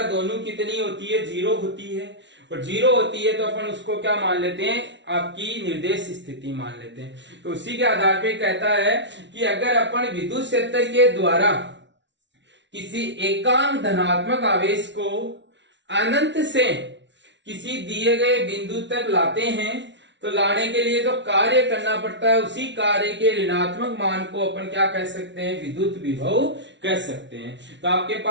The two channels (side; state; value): left; late; 0.52 ms